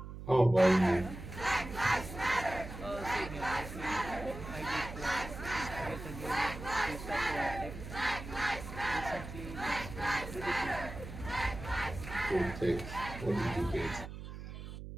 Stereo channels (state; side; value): noise; right; hum, 10 dB below the sound